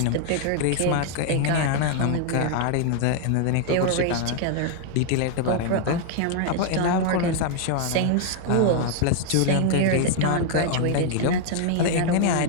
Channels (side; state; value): both; different; correlation 0.00